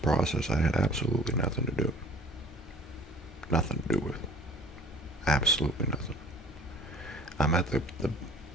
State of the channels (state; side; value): normal; both; correlation 0.49